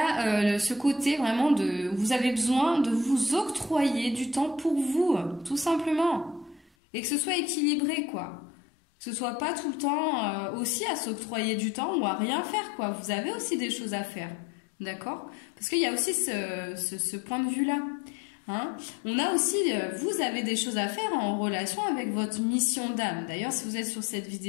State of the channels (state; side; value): drops out; right; at 6.7 s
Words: ce côté vraiment vous avez besoin de vous octroyer du temps pour vous, tout simplement. et que ce soit équilibré, quoi. Que ce soit pas tout le temps aussi à s'octroyer du temps ou à rien faire, quoi. Vous avez aussi des choses à faire, d'accord? Parce qu'il y a aussi ce point de vue-là. Hein? On a aussi, vous avez des choses à faire en relation avec votre mission d'âme. D'ailleurs, si vous êtes sur cette